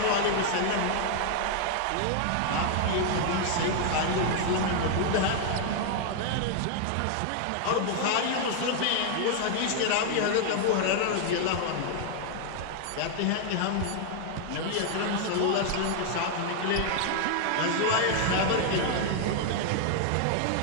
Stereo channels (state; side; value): different; both; correlation 0.00